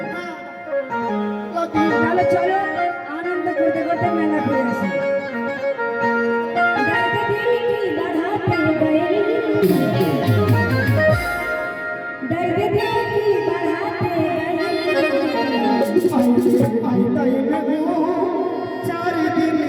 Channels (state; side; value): identical; both; correlation 1.00